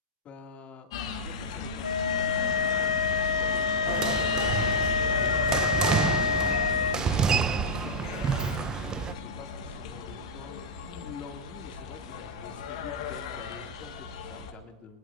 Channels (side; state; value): both; normal; correlation -0.08